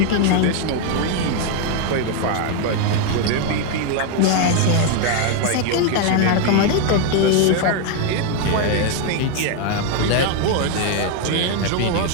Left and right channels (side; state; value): both; different; correlation 0.01